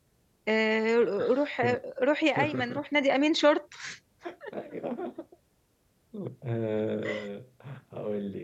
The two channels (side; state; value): both; identical; correlation 1.00